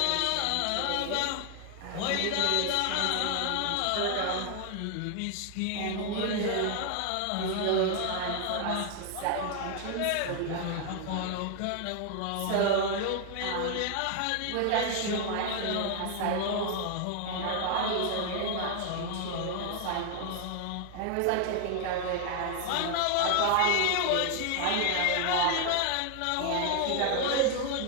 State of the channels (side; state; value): both; different; correlation 0.00